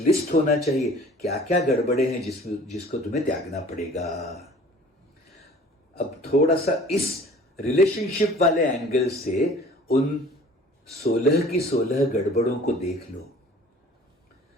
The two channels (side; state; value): both; normal; correlation 0.49